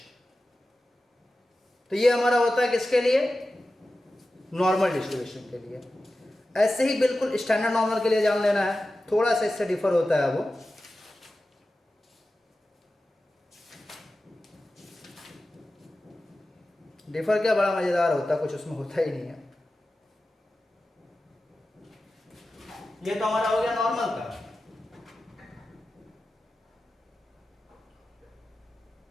तो ये हमारा होता है किसके लिए, नॉर्मल डिस्ट्रीब्यूशन के लिए। ऐसे ही बिल्कुल स्टैंडर्ड नॉर्मल के लिए जान लेना है, थोड़ा सा इससे डिफर होता है वो। डिफर क्या बड़ा मजेदार होता है, कुछ उसमें होता ही नहीं है। ये तो हमारा हो गया नॉर्मल का।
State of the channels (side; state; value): both; normal; correlation 0.94